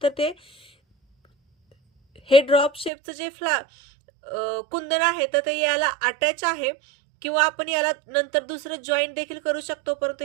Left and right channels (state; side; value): drops out; left; at 2.9 s